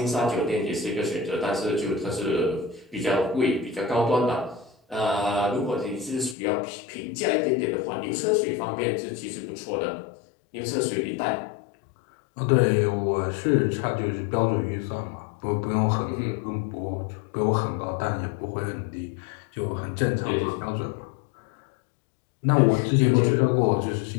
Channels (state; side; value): drops out; right; at 6.4 s